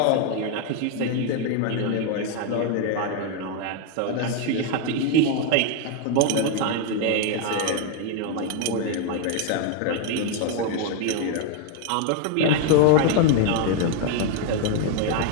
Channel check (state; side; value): different; both; correlation 0.01